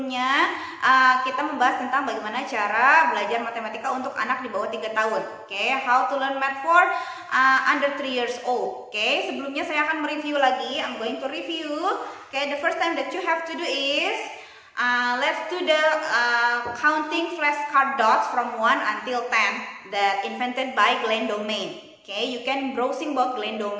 kita membahas tentang bagaimana cara belajar matematika untuk anak di bawah 3 tahun. Okay, how to learn math for under 3 years old. Okay, sebelumnya saya akan mereview lagi. I'm going to review. Okay, the first time that you have to do is let's do the counting flashcard dots from 1 until 10 that invented by Glenn Domain. Okay, you can browsing about Glenn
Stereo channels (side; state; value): both; identical; correlation 1.00